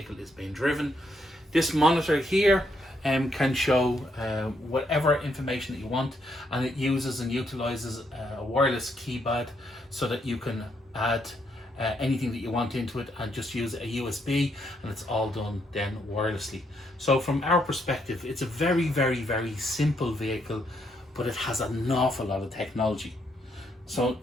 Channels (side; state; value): both; normal; correlation 0.76